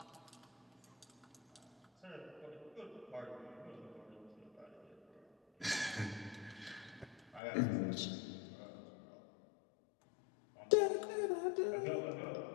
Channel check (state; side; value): drops out; right; at 7.4 s